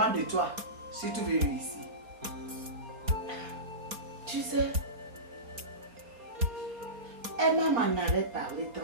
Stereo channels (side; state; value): left; late; 4.3 ms